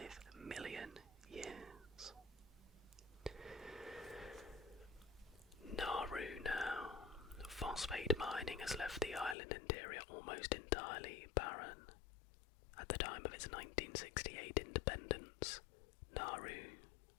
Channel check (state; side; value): drops out; right; at 9.3 s